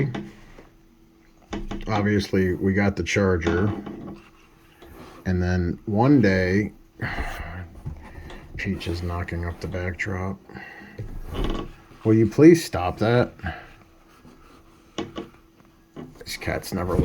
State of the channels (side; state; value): both; identical; correlation 1.00